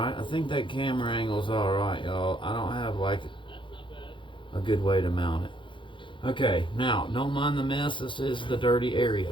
I think that camera angle's alright, y'all. I don't have like a good way to mount it. Okay, now, don't mind the mess. This is the dirty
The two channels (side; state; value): right; late; 0.24 ms